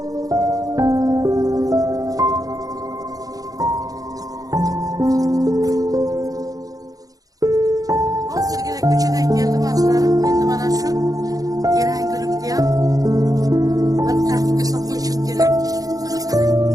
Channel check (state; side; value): late; left; 0.17 ms